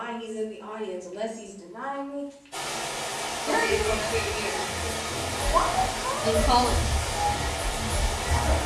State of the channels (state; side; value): identical; both; correlation 1.00